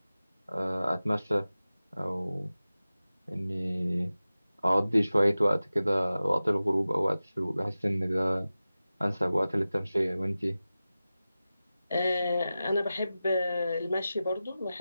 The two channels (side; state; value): both; inverted; correlation -0.95